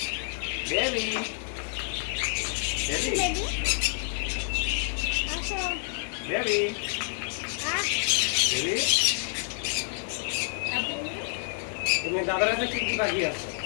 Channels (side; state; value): right; silent; 59 dB below the other